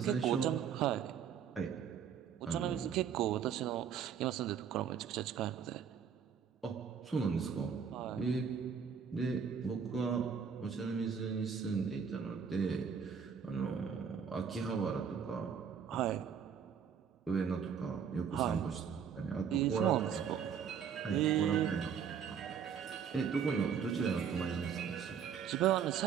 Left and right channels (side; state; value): left; quieter; 7.3 dB